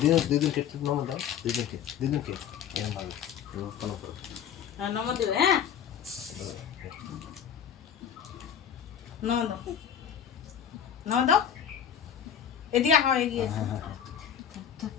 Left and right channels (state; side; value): quieter; right; 8.7 dB